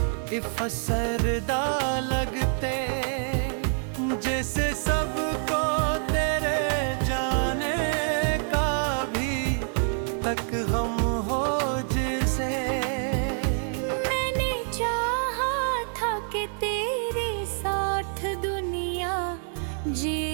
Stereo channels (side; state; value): left; silent; 58 dB below the other